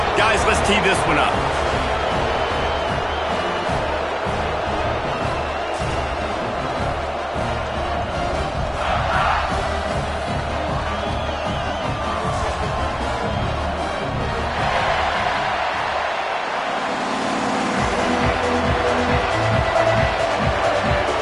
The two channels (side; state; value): both; identical; correlation 1.00